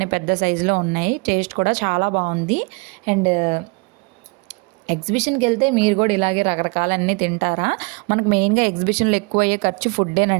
పెద్ద సైజులో ఉన్నాయి, టేస్ట్ కూడా చాలా బాగుంది. అండ్ ఎగ్జిబిషన్కి వెళ్తే మీరు కూడా ఇలాగే రకరకాలన్నీ తింటారా? మనకు మెయిన్గా ఎగ్జిబిషన్లో ఎక్కువ అయ్యే ఖర్చు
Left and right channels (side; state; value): left; quieter; 30.2 dB